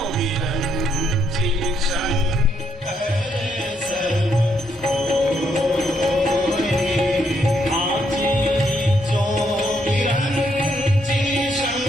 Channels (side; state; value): both; normal; correlation 0.75